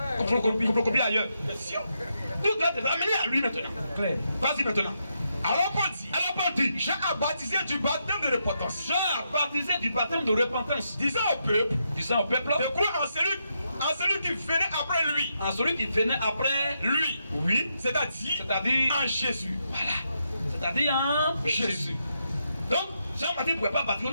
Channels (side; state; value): both; inverted; correlation -0.82